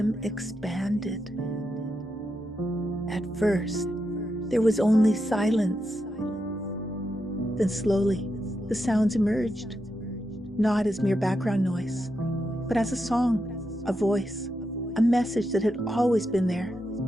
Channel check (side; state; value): both; normal; correlation 0.85